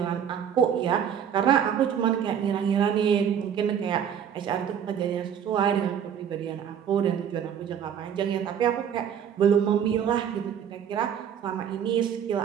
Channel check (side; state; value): left; quieter; 8.6 dB